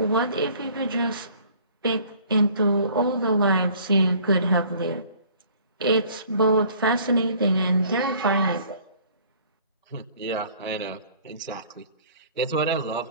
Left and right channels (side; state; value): both; inverted; correlation -0.54